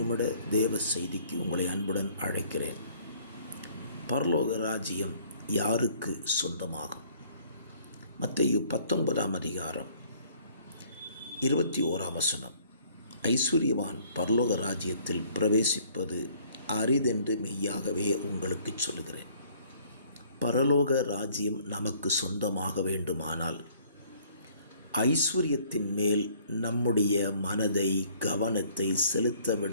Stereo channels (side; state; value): both; inverted; correlation -0.59